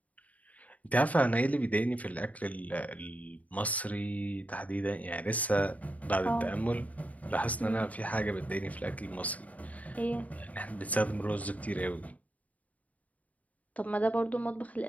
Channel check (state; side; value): late; right; 0.071 ms